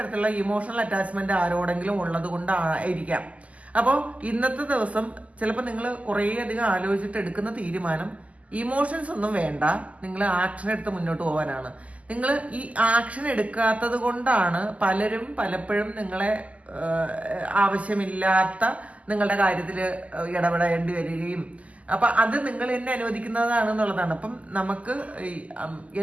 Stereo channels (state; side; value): late; left; 0.069 ms